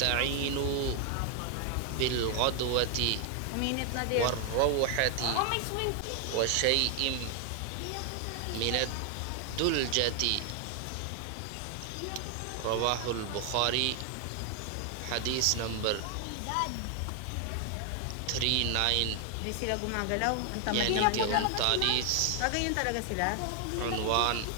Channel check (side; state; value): both; different; correlation 0.00